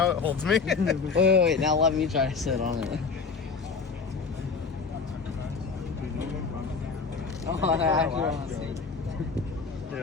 it holds me. Wait, now let me try to sit on it. Oh, I actually want to see.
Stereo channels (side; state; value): right; quieter; 5.0 dB